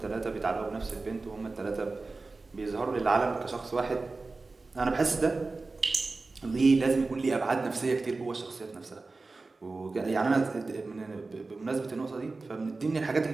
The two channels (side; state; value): left; quieter; 3.7 dB